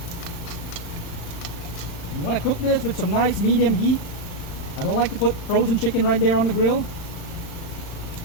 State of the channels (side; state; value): right; late; 35 ms